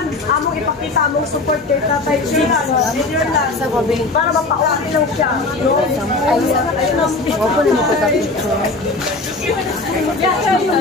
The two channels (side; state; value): right; quieter; 3.3 dB